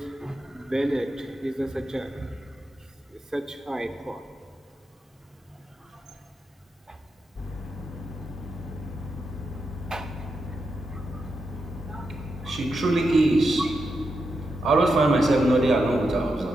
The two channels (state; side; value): normal; both; correlation 0.86